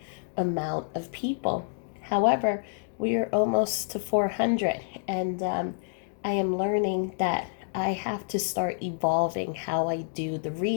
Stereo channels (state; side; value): silent; right; digital silence